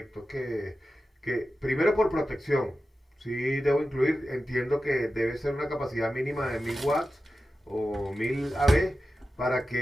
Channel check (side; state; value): both; normal; correlation 0.93